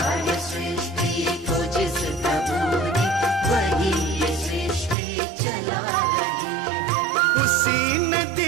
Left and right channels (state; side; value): drops out; left; at 5.0 s